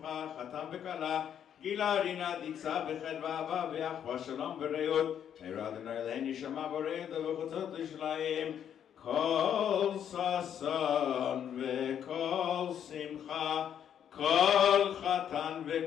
חתן וכלה. גילה רינה דיצה בחדווה אהבה ואחווה שלום ורעות. מהרה אדוני אלוהינו שמע בורא ובחוצות ירושלים. כל ששון וכל שמחה, כל חתן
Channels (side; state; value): right; quieter; 9.2 dB